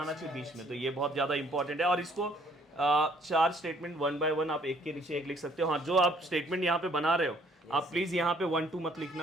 चाहिए, बीच में। तो ये बहुत ज्यादा इंपॉर्टेंट है। और इसको 4 स्टेटमेंट 1 बाय 1 आप एक के नीचे एक लिख सकते हो। हाँ, जो आप स्टेटमेंट यहाँ पे बना रहे हो आप प्लीज यहाँ पे 1 2 मत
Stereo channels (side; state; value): both; normal; correlation 0.63